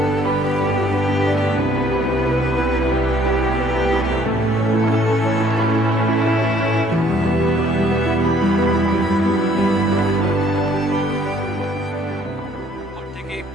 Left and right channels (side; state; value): both; normal; correlation 0.62